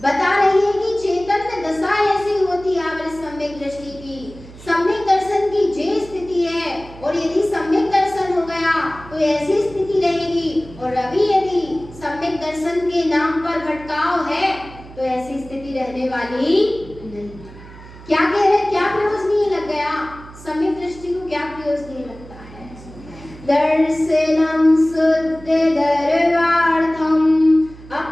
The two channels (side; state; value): right; noise; hum, 18 dB below the sound